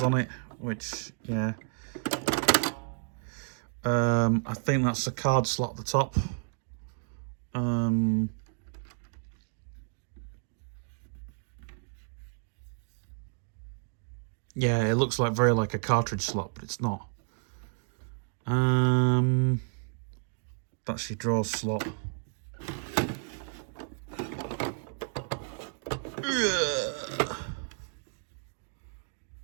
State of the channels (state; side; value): silent; left; digital silence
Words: on it, which, yeah. I think that's a card slot at the top. Yeah, it looks like very like a cartridge slot, but it's not. That's your draw slot.